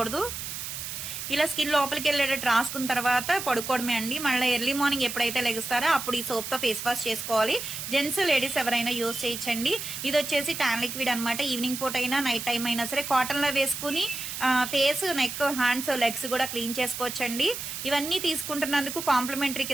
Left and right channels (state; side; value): noise; right; hiss, 7 dB below the sound